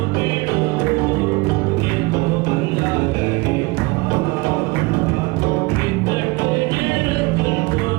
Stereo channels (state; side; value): quieter; left; 24.1 dB